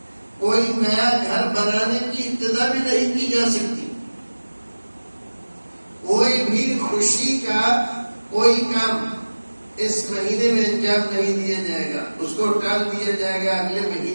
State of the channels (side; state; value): both; inverted; correlation -1.00